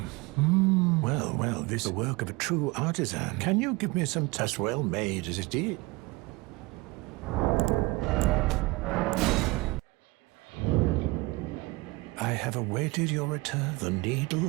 Well, this is the work of a true artisan. Can you give me some as well made as it is? I have awaited your return. The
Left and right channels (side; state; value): left; quieter; 23.4 dB